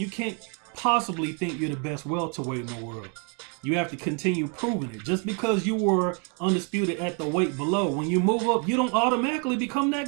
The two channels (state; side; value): quieter; left; 37.5 dB